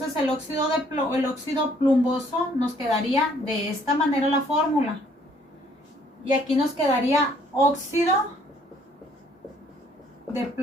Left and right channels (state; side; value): normal; both; correlation 0.63